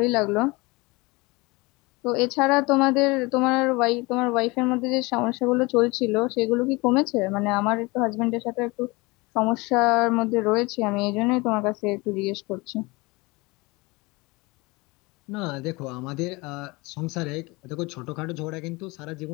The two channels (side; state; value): right; quieter; 24.6 dB